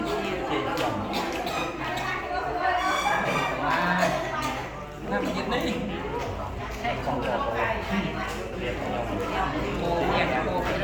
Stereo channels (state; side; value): identical; both; correlation 1.00